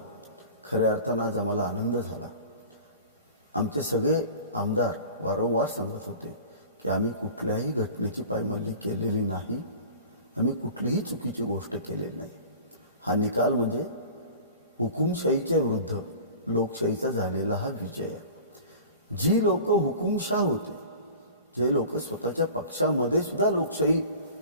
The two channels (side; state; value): both; inverted; correlation -0.39